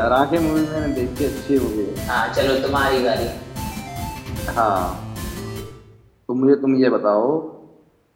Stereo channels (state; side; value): identical; both; correlation 1.00